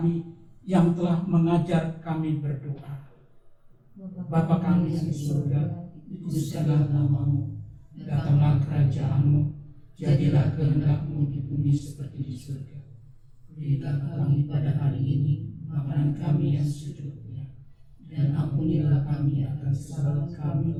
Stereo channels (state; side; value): identical; both; correlation 1.00